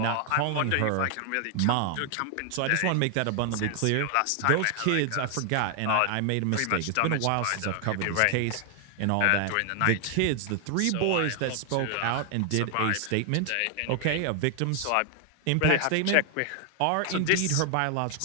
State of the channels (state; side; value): different; both; correlation 0.00